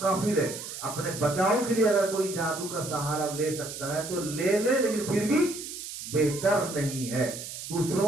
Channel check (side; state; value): right; noise; hiss, 9 dB below the sound